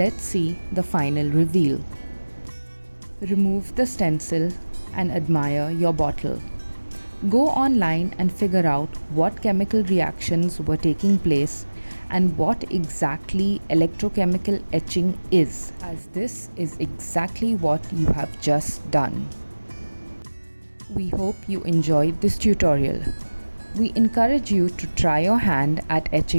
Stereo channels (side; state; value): both; inverted; correlation -1.00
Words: see the final reveal. Remove the stencil and admire your bottle. Go online and figure out what chemical reactions were taking place and what exactly electrochemical etching is, as this is exactly what you have just done. We hope you enjoyed this tutorial. We encourage you to try your hand at